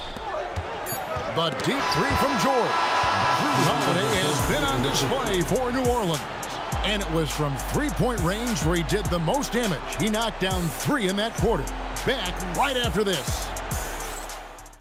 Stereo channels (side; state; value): both; identical; correlation 1.00